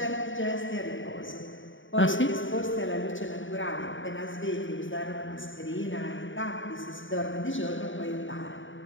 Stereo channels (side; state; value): right; late; 0.56 ms